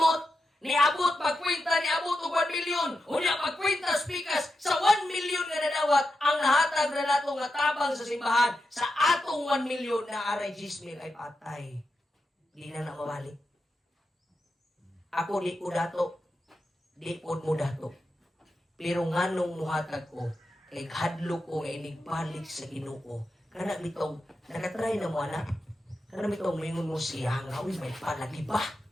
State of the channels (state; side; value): normal; both; correlation 0.88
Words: Niabot pagkwenta, niabot og 1 milyon. Unya pagkwenta spikas sa 1 milyon nga nadawat ang nahatag na nato nga tabang sa simbahan. Sa atong 1 milyon na aray 10,000 ay patay. Di na mabalik. Ako di ko dato. Di po mo dato. Pero nganong muhatag ko, kay hadlo ko nga inigbalik sa Ginoo. Kana bitong nakatry na mo anak. Kana bitong mingon mo siya nga uy may palagi ba?